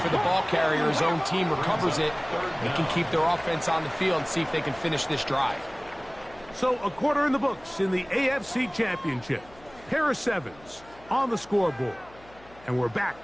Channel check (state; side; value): noise; left; hum, 24 dB below the sound